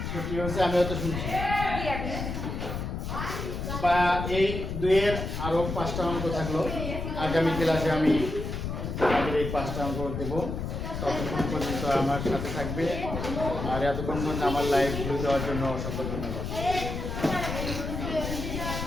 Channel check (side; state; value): left; noise; rumble, 4 dB below the sound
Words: ছুটি হচ্ছে, আমি হয়তো শুনছি। বা এই দুইয়ের আরো 5টা অঙ্ক থাকলো, আগামী ক্লাসে আমি আমাদের এই 5টা অঙ্ক দেবো। ততক্ষণ পর্যন্ত আমার সাথে থাকবে, আর এতক্ষণ পর্যন্ত আমার লাইভ ভিউ দেওয়ার জন্য অসংখ্য ধন্যবাদ।